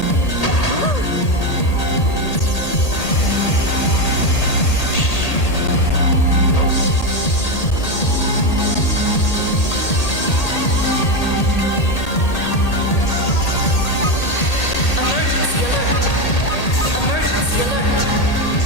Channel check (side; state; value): right; late; 1.8 ms